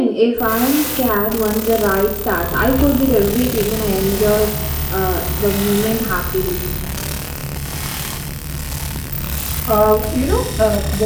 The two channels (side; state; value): both; identical; correlation 1.00